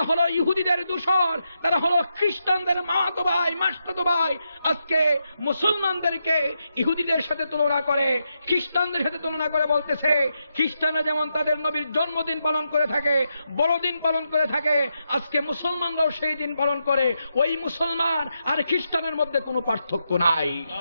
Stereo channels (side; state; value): both; inverted; correlation -0.84